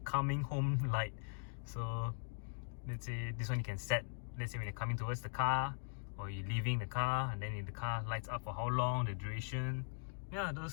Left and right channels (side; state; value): right; silent; digital silence